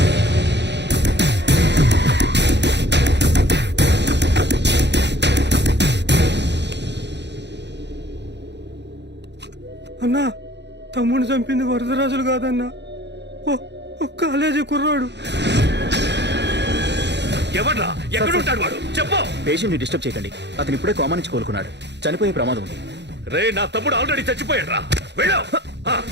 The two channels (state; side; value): late; left; 0.50 ms